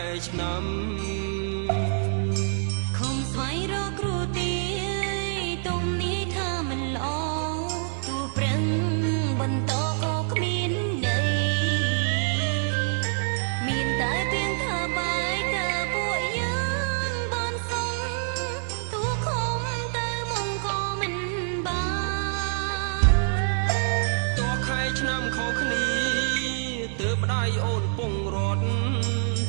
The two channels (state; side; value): silent; left; 61 dB below the other